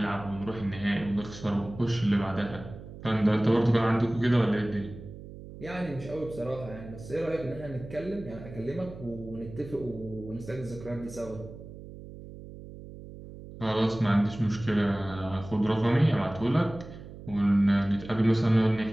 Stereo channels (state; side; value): noise; right; hum, 14 dB below the sound